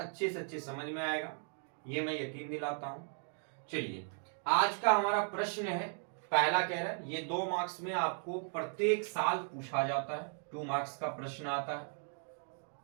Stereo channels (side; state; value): left; silent; 53 dB below the other